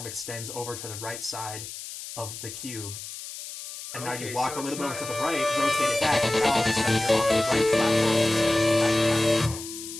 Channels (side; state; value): left; noise; hiss, 11 dB below the sound